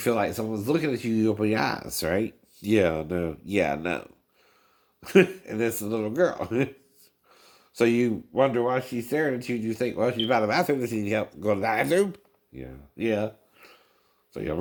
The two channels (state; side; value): identical; both; correlation 1.00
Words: like someone's looking at you, you open your eyes, right? Yeah, no. And it's a little girl. So you wonder why she's staring at you. You think, well, she's by the bathroom. Does she need help go to the bathroom? Yeah. So you